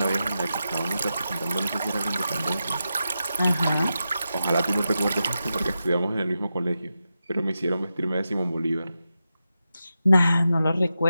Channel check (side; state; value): both; inverted; correlation -0.90